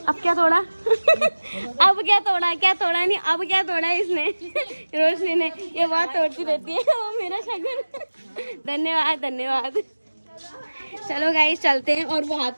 क्या तोड़ा? अब क्या तोड़ा? क्या तोड़ा नहीं, अब क्या तोड़ा इसने? रोशनी ने। ये बहुत तोड़ती रहती है वो मेरा शगुन। धन्यवाद धन्यवाद। चलो गाइस चलते हैं। और वो हाथ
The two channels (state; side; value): inverted; both; correlation -1.00